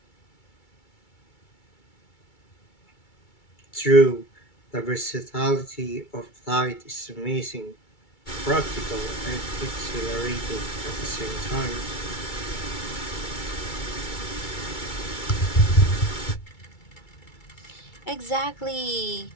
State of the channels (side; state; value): right; late; 2.3 ms